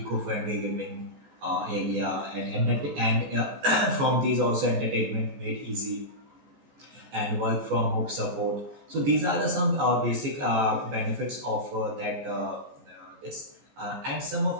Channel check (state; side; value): late; left; 14 ms